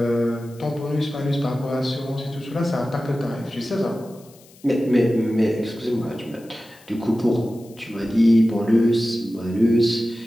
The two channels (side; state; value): left; noise; hiss, 26 dB below the sound